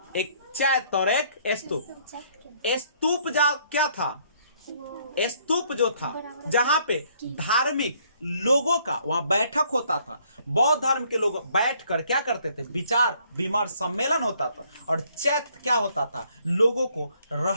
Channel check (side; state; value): both; inverted; correlation -0.65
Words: एक चैत्य और एक स्तूप। स्तूप क्या था? स्तूप जो था जहां पे धार्मिक लोगों का वहां बैठक होता था, बौद्ध धर्म के लोग बैठकर क्या करते थे, विचार विमर्श सम्मेलन होता था। और चैत्य क्या होता था? लोगों को